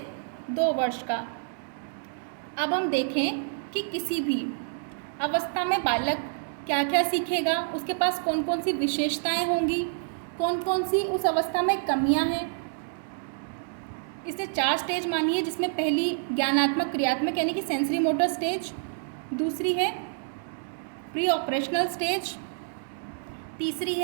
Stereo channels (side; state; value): left; silent; digital silence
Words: 2 वर्ष का। अब हम देखें कि किसी भी अवस्था में बालक क्या क्या सीखेगा, उसके पास कौन कौन सी विशेषताएं होंगी, कौन कौन सी उस अवस्था में कमियां हैं। इसने 4 स्टेज मानी है, जिसमें पहली ज्ञानात्मक क्रियात्मक यानी कि सेंसरी मोटर स्टेज, दूसरी है प्री ऑपरेशनल स्टेज, तीसरी